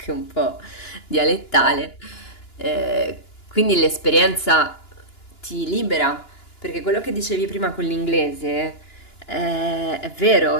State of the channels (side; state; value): right; late; 2.9 ms